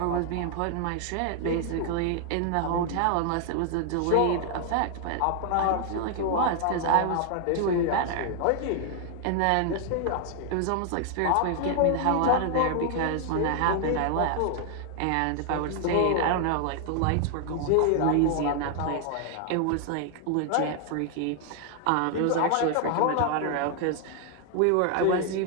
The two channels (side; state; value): both; different; correlation 0.00